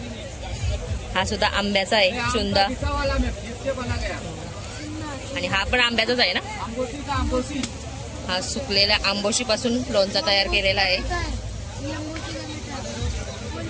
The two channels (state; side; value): identical; both; correlation 1.00